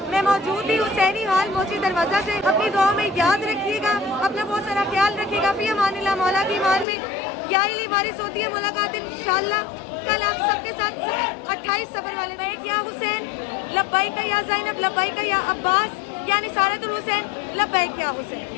मैं मौजूद थी हुसैनी हाल मोची दरवाज़ा से। अपनी दुआ में याद रखिएगा, अपना बहुत सारा ख्याल रखिएगा। फ़ी अमानिल्लाह। मौला की ईमान में यही वारिस होती है मुलाकात इंशाल्लाह। कल आप सबके साथ 28 सफ़र वाले में या हुसैन लब्बैक या ज़ैनब लब्बैक या अब्बास या निसारतुल हुसैन लब्बैक या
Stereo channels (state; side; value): drops out; right; at 6.9 s